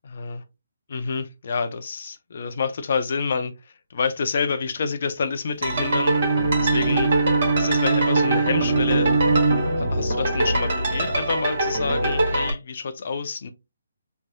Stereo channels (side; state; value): both; inverted; correlation -0.76